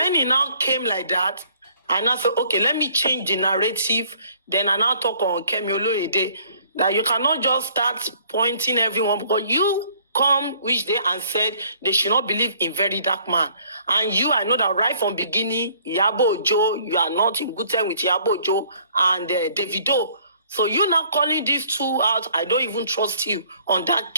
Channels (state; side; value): inverted; both; correlation -0.59